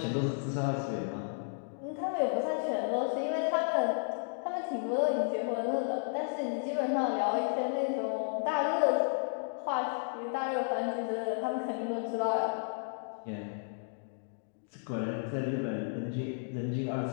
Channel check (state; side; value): silent; right; digital silence